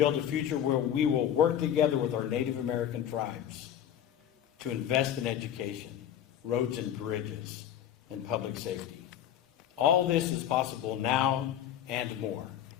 a future where we will work together with our Native American tribes to invest in education, roads and bridges, and public safety. All this is possible now and more.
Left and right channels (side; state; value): right; quieter; 10.4 dB